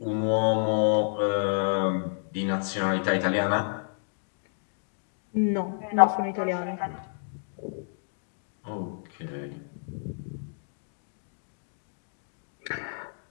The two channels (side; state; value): right; silent; digital silence